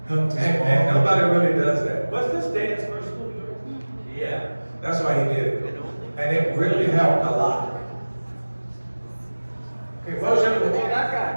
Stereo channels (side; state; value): both; inverted; correlation -1.00